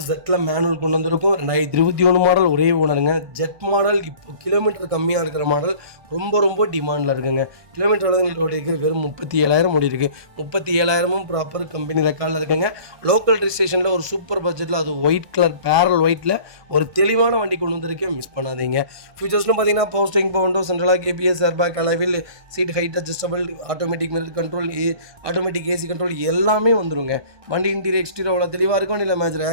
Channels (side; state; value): left; late; 1.2 ms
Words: ஜெட்டில் மேனுவல் கொண்டு வந்திருக்கும். 2021 மாடல், ஒரே ஓனருங்க. ஜெட் மாடல் இப்போ கிலோமீட்டர் கம்மியாக இருக்கிற மாடல், ரொம்ப ரொம்ப டிமாண்டில் இருக்குங்க. கிலோமீட்டர் அளவுகள் ஓடி இருக்குது, வெறும் 37,000 ஓடி இருக்குது. 37,000 ப்ராப்பர் கம்பெனி ரெக்கார்டில் இருக்குங்க. லோக்கல் ரிஜிஸ்ட்ரேஷனில் ஒரு சூப்பர் பட்ஜெட்டில், அது ஒயிட் கலர் பேரல் ஒயிட்டில் ஒரு தெளிவான வண்டி கொண்டு வந்திருக்கேன், மிஸ் பண்ணாதீங்க. ஃபியூச்சர்ஸ்னு பார்த்தீங்கன்னா போஸ்டிங் பவுண்டோ, சென்ட்ரலாக கேபிஎஸ், airbag, alloy wheel, seat height adjustable, automatic mirror control, automatic AC control எல்லாமே வந்துருங்க. வண்டி இன்டீரியர் எக்ஸ்டீரியர் அவ்வளோ தெளிவாக இருக்கும். வண்டியில் மேஜர்